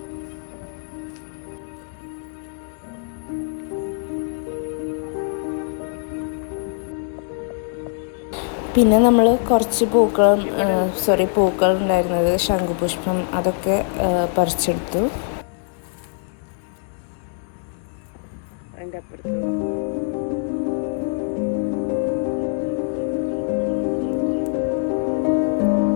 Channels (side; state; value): right; silent; digital silence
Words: പിന്നെ നമ്മൾ കുറച്ച് പൂക്കൾ ഉണ്ടായിരുന്നത്, ശംഖുപുഷ്പം, അതൊക്കെ പറിച്ചെടുത്തു. അതിൻ്റെ അപ്പുറത്ത്